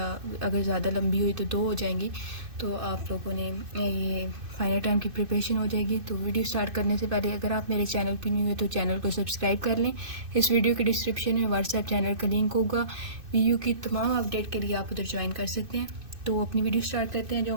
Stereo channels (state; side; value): late; left; 2.6 ms